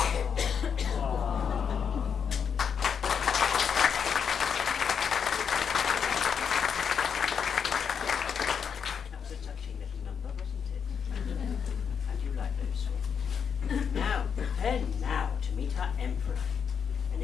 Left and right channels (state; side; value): quieter; right; 7.0 dB